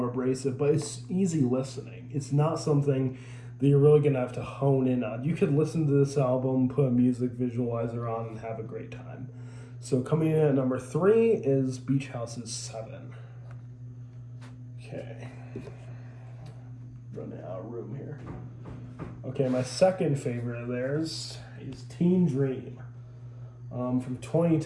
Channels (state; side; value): identical; both; correlation 1.00